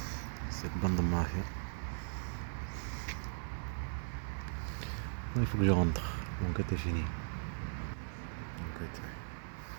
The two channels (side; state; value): left; silent; 52 dB below the other